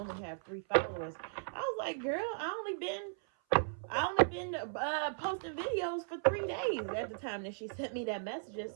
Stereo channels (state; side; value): silent; left; 53 dB below the other